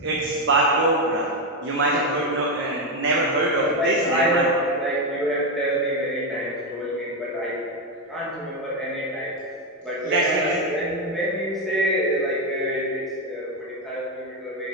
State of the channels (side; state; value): both; normal; correlation 0.08